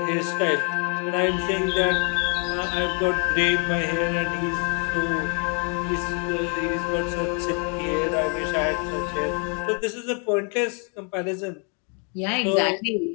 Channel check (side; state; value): right; quieter; 37.6 dB